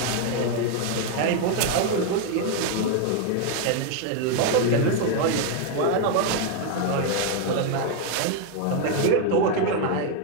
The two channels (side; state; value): both; different; correlation 0.01